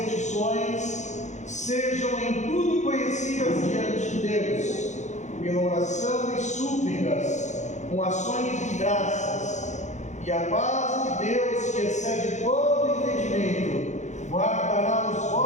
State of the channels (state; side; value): late; right; 0.34 ms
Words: sejam em tudo conhecidas diante de Deus, pela oração e súplicas, com ações de graças, e a paz de Deus, que excede todo entendimento, guardará os